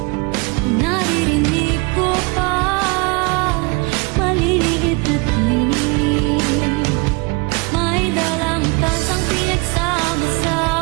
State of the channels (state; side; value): quieter; left; 29.4 dB